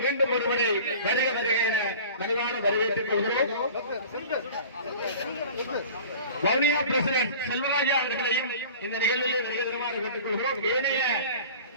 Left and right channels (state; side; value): inverted; both; correlation -0.41